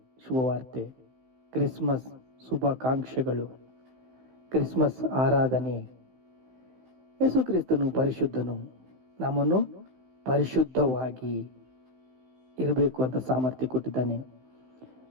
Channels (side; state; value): left; late; 16 ms